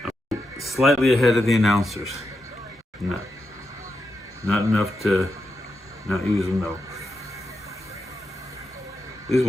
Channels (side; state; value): both; normal; correlation 0.86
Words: Slightly ahead of the announcers. Not enough to not use them though. This is